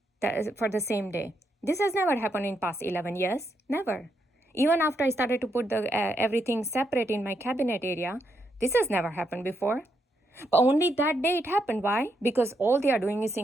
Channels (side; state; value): both; normal; correlation 0.79